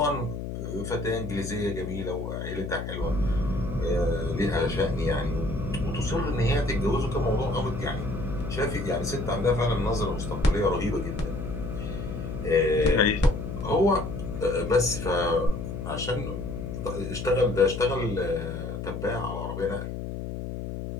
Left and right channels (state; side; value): noise; left; hum, 6 dB below the sound